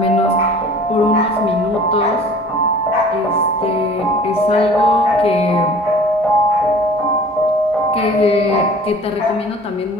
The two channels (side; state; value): both; normal; correlation 0.47